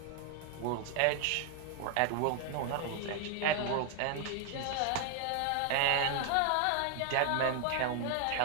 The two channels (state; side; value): different; both; correlation 0.00